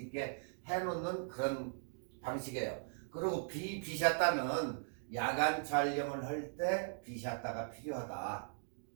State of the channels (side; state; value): left; silent; digital silence